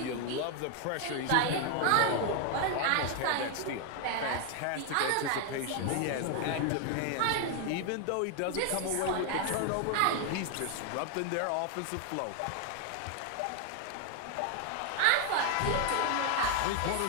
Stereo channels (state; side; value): different; both; correlation 0.00